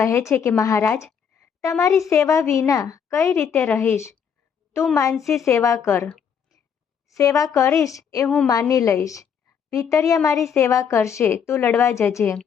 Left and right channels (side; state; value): right; quieter; 7.3 dB